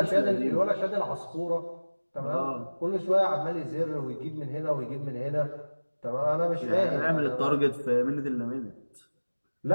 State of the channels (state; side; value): inverted; both; correlation -1.00